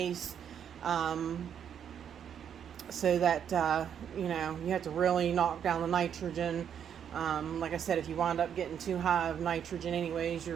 so that you have to really knock down the nitrogen. Like I said, if you wind up getting too high of nitrogen anyways,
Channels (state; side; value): quieter; left; 8.6 dB